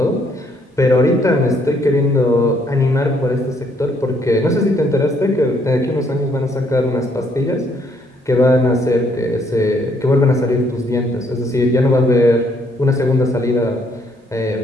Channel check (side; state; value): both; normal; correlation 0.68